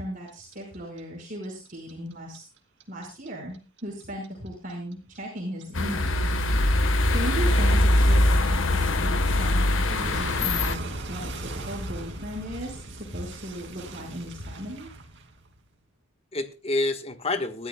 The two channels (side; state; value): both; normal; correlation 0.75